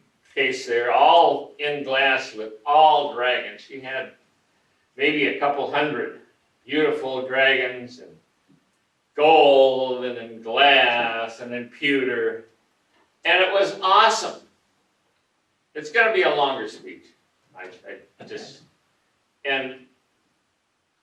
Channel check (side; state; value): both; identical; correlation 1.00